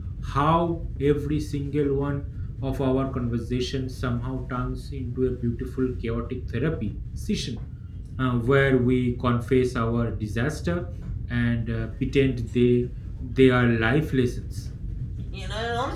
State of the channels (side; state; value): both; identical; correlation 1.00